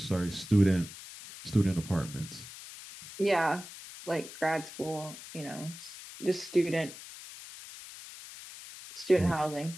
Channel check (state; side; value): noise; left; hiss, 14 dB below the sound